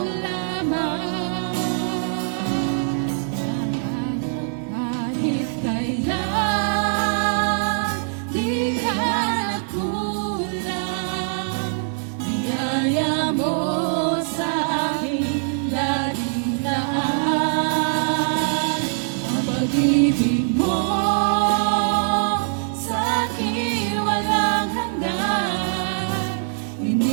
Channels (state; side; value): silent; left; digital silence